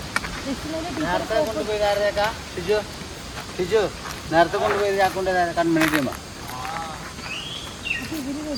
നേരത്തെ കൊണ്ടുപോയി ആക്കൊണ്ട് കൺമണി ചെയ്യുമ്പോൾ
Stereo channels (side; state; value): both; identical; correlation 1.00